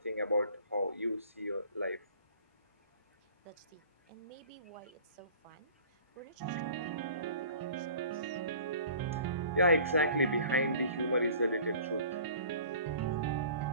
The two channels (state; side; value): inverted; both; correlation -0.47